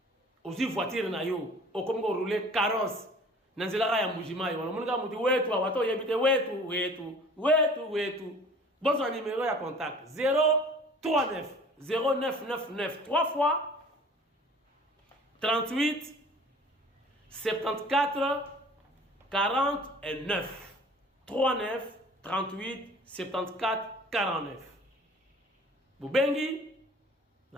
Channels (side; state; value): both; normal; correlation 0.48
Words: aussi voiture na yo okomi ko rouler carrosse na nzela ya Mbujimai wana munika muti wetu awato yebite wetu bonsoir numéro ya contact 039 0999 3 fois 38 74 49 39 38 74 49 Bubengi